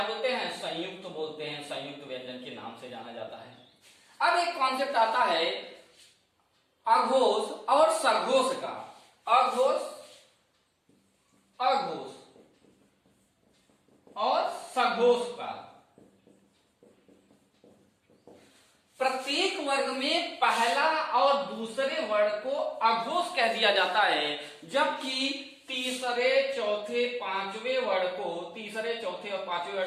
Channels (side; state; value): both; identical; correlation 1.00